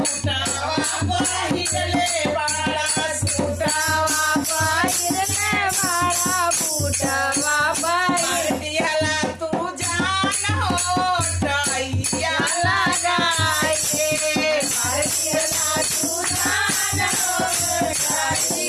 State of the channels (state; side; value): identical; both; correlation 1.00